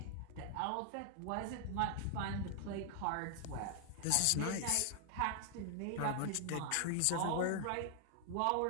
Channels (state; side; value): different; both; correlation 0.00